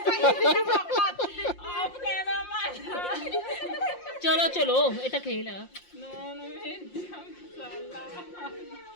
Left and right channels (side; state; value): right; late; 5.7 ms